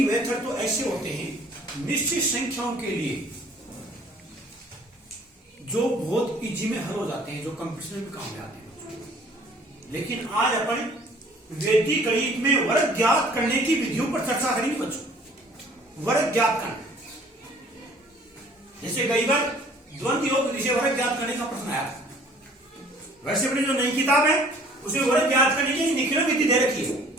मेथड तो ऐसे होते हैं निश्चित संख्याओं के लिए जो बहुत इजी में हल हो जाते हैं, जो कंपटीशन में काम में आते हैं। लेकिन आज अपन वैदिक गणित में वर्ग ज्ञात करने की विधियों पर चर्चा करेंगे बच्चों। वर्ग ज्ञात करना, जैसे कई बार द्वंद्व योग विधि से वर्ग ज्ञात करने का प्रश्न आया था। वैसे अपनी जो नई किताब है उसमें वर्ग ज्ञात करने की निखिल विधि दे रखी है,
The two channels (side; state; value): both; normal; correlation 0.54